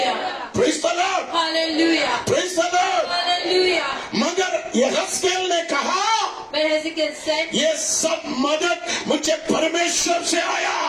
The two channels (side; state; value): both; identical; correlation 1.00